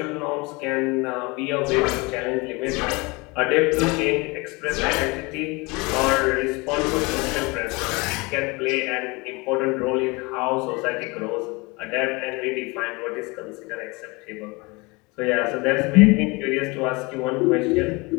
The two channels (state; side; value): quieter; right; 26.0 dB